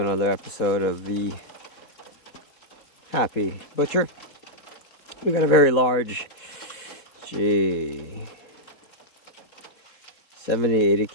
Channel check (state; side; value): late; right; 4.1 ms